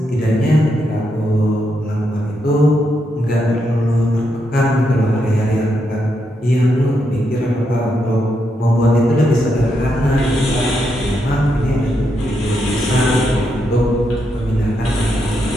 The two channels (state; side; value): normal; both; correlation 0.81